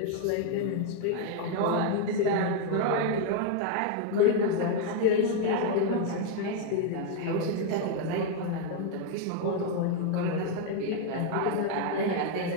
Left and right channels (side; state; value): both; different; correlation 0.00